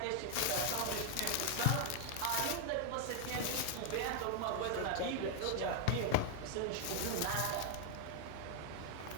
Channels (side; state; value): both; different; correlation 0.00